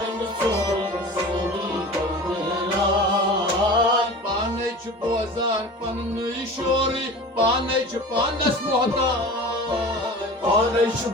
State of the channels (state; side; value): normal; both; correlation 0.37